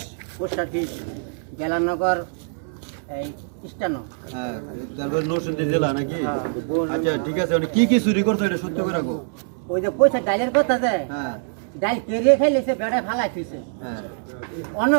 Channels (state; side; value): silent; left; digital silence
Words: Post office Gelanagar এই স্টানো। হ্যাঁ, তারপর নরসিংদী জেলা নাকি? আচ্ছা ঠিক আছে, মানে কি কি চুরি করছো এটা সত্য করে রাখো। ওই যে পয়সা ডাইলের কথা যে হ্যাঁ ডাইল কেড়ে খাইলেছে বেড়ায় ফালাই থইছে। হ্যাঁ অন্য